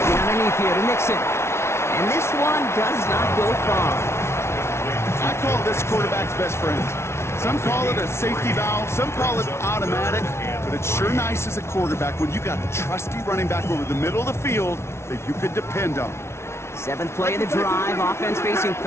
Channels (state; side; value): late; right; 0.13 ms